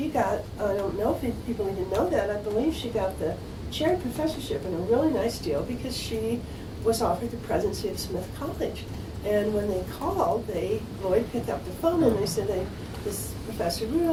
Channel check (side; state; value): both; identical; correlation 1.00